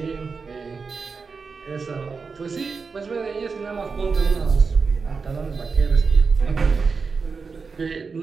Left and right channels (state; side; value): quieter; left; 4.9 dB